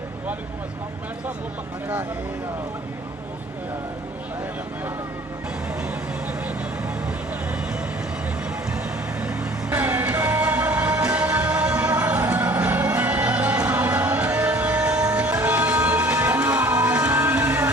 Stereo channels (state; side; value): normal; both; correlation 0.51